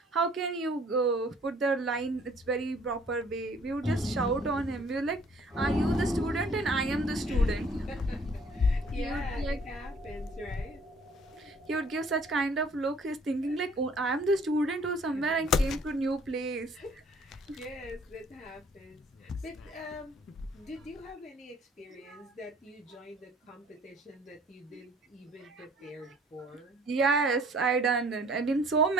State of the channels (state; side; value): normal; both; correlation 0.57